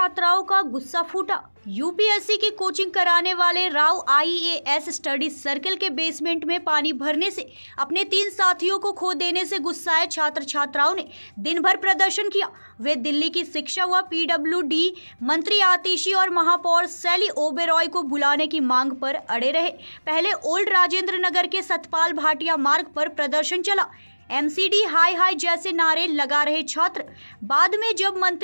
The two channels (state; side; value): inverted; both; correlation -1.00